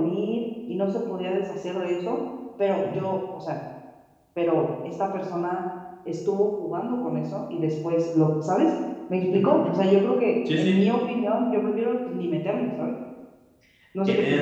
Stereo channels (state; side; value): identical; both; correlation 1.00